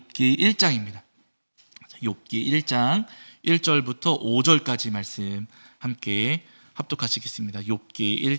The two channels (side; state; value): both; inverted; correlation -1.00